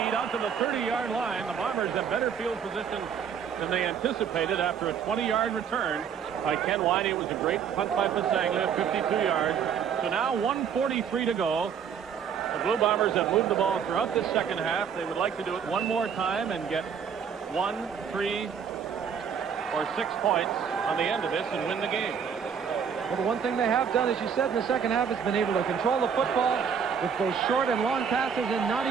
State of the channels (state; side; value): quieter; left; 7.3 dB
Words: out to the 30-yard line. The Bombers have better field position than they anticipated after a 20-yard return by Ken Winey. It was a great punt by Pasaglia, 52 yards. So now 1:43 to go. The Blue Bombers have moved the ball throughout this second half. They would like to do it one more time and get 1, 3, or 6 points on the end of this and win the game. Well, the one thing they have done, as you said, in the second half has been able to control the football with both short and long passes and not